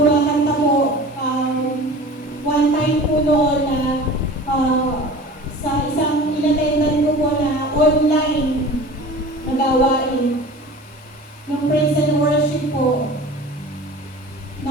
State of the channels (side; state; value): both; normal; correlation 0.39